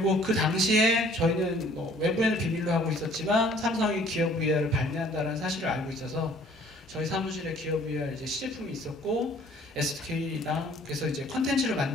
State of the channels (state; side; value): normal; both; correlation 0.56